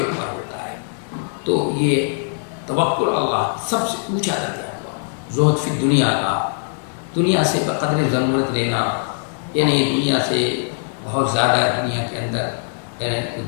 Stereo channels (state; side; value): silent; right; digital silence